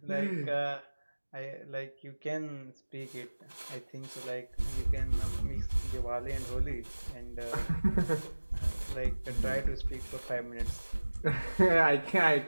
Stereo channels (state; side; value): inverted; both; correlation -1.00